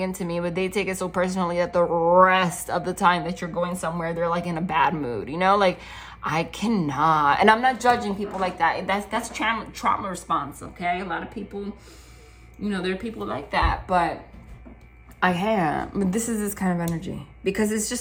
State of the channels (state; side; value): identical; both; correlation 1.00